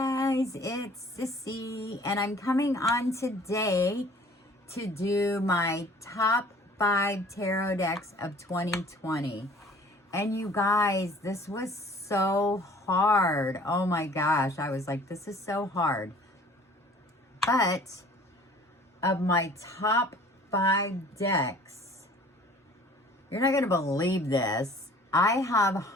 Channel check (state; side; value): normal; both; correlation 0.51